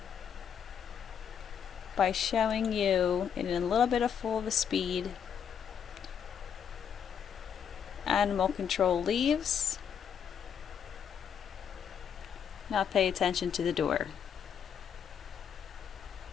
by showing you in a little bit of full of a speed. Animal control leaves. Now pay attention to the door.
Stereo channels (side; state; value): right; quieter; 7.9 dB